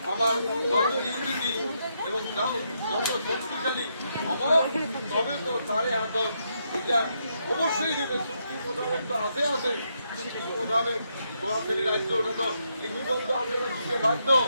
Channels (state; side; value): inverted; both; correlation -0.79